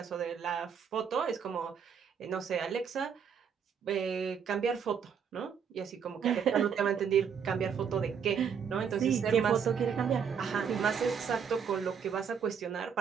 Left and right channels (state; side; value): quieter; left; 7.1 dB